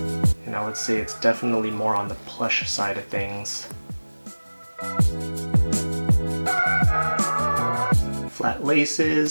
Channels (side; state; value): both; inverted; correlation -1.00